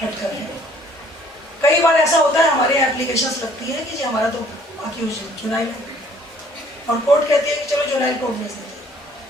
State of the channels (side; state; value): both; normal; correlation 0.58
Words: हटकर है। कई बार ऐसा होता है हमारे यहाँ एप्लीकेशंस लगती है कि जी हमारा तो अक्यूज जुवेनाइल है, और कोर्ट कहती है कि चलो जुवेनाइल कोर्ट भेज देते हैं।